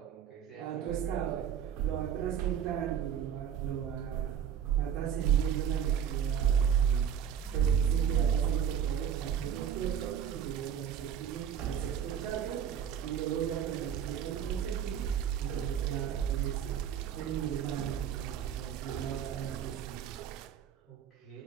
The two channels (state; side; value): quieter; left; 8.7 dB